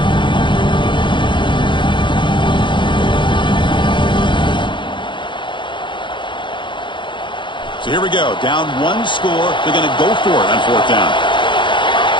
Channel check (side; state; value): right; late; 0.23 ms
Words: So here we go. Down one score. They're going to go for it on fourth down.